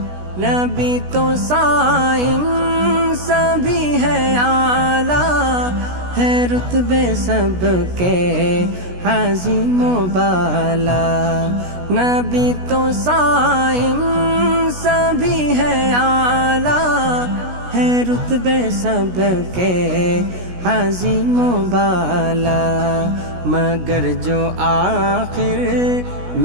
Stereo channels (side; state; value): left; late; 16 ms